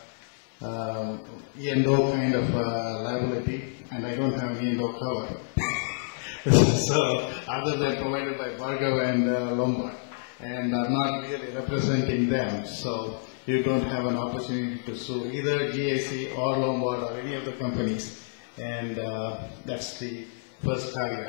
E&O kind of liability, and I don't have an E&O cover. So, other than provided by Bhargav and Lombard, and I'm not really representing them, so you don't have an opportunity to sue either GIC or Lombard or any of the companies, and that's the first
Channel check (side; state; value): right; silent; digital silence